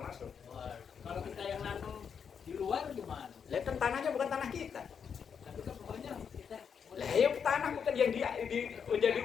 Kalau kita yang nanam di luar gimana? Lah kan tanahnya bukan tanah kita. Tapi kan pokoknya kita Lah ya tanah bukan yang menjadi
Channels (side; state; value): right; quieter; 6.9 dB